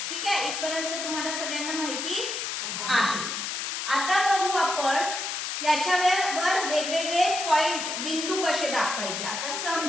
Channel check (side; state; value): left; noise; hiss, 3 dB below the sound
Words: ठीक आहे, इथपर्यंत तुम्हाला सगळ्यांना माहिती आहे. आता बघू आपण याच्यावर वेगवेगळे पॉइंट, बिंदू कसे दाखवायचे. आता